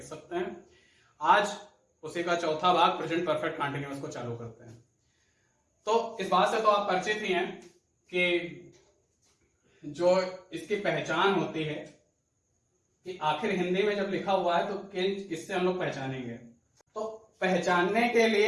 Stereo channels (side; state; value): both; identical; correlation 1.00